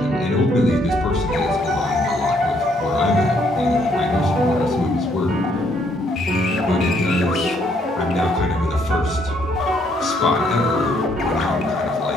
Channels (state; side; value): normal; both; correlation 0.69